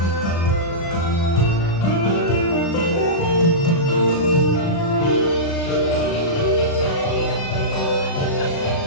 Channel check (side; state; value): right; late; 36 ms